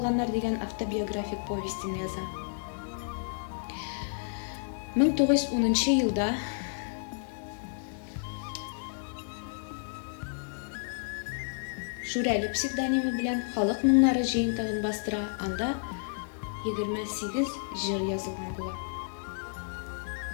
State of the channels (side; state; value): right; silent; digital silence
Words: дигән автобиографик повестен яза. 1910 елда Шүрәле псевдонимы белән халык моңнары җыентыгын бастыра, анда 28 җыр язылган була.